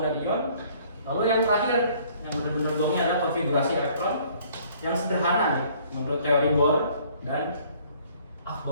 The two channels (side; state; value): both; inverted; correlation -0.58